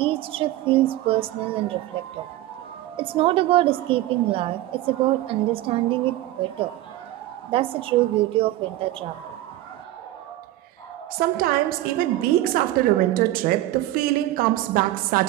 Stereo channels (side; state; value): left; quieter; 15.4 dB